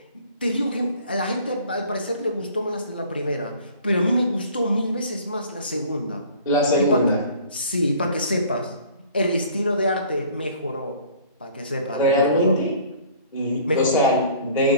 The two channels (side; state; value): both; inverted; correlation -0.51